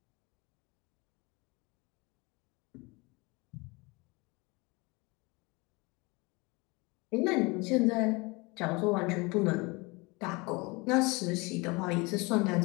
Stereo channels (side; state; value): right; quieter; 26.2 dB